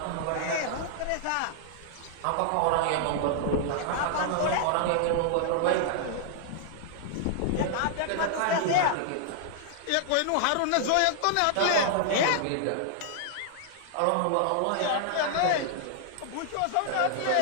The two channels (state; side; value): different; both; correlation -0.01